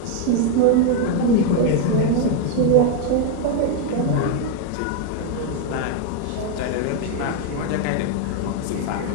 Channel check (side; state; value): both; different; correlation 0.01